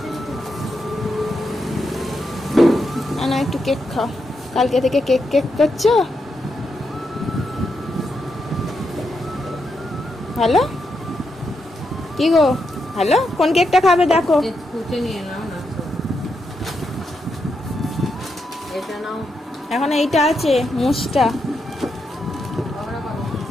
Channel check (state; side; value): normal; both; correlation 0.83